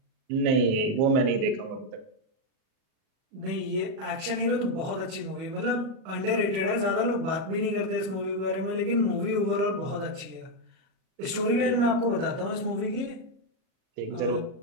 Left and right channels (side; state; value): left; late; 37 ms